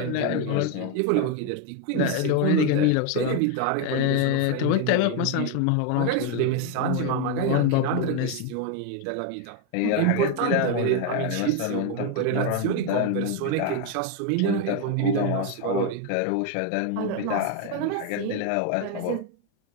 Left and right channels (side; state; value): both; different; correlation 0.01